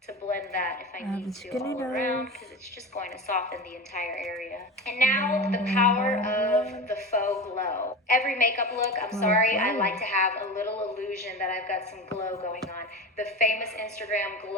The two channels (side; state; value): both; normal; correlation 0.26